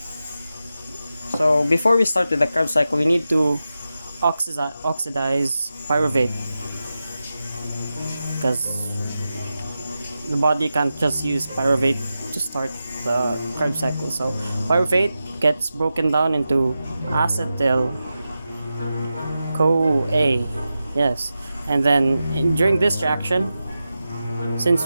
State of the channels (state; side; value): inverted; both; correlation -0.92